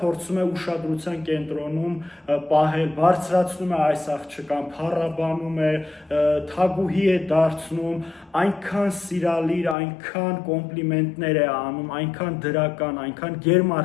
փորձում է ուշադրության կենտրոնում պահել, բարձրացնում է այս աղջկան, փառաբանում է, թագուհի է դարձնում, այնքան սիրալիր, այնքան կոմպլիմենտներ է անում, այնքան դրական, այնքան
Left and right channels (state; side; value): drops out; right; at 9.8 s